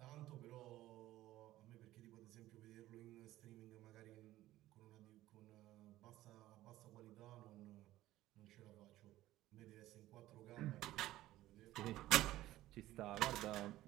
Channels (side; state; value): left; quieter; 15.4 dB